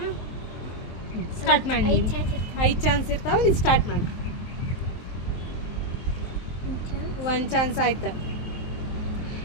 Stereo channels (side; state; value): right; late; 23 ms